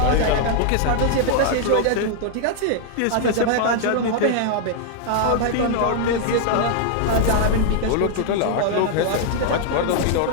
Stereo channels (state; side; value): different; both; correlation 0.00